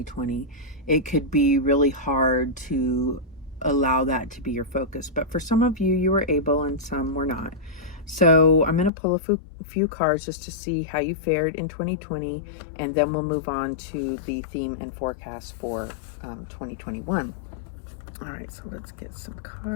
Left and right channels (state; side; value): drops out; right; at 8.9 s